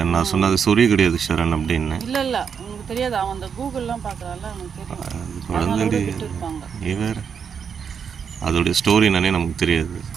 நான் சொன்னேன் அது சொறி கிடையாது ஷரண் அப்படின்னு. இல்லை இல்லை உங்களுக்கு தெரியாது, அவன் அந்த கூகுள்லாம் பார்க்குறான்ல அவனுக்கு தெரியும். அது குழந்தைடி விட்டு இருப்பாங்க. நீ வேறு அதோடைய ஸ்டோரி என்னன்னே நமக்கு தெரியாது.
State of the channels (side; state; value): left; quieter; 6.9 dB